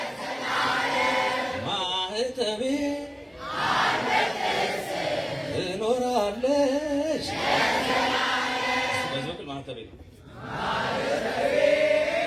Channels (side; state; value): both; identical; correlation 1.00